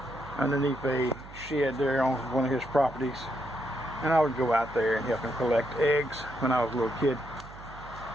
underneath a shed there on one of his properties, and I would go out there and help him collect eggs when I was a little kid.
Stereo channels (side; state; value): right; noise; hum, 17 dB below the sound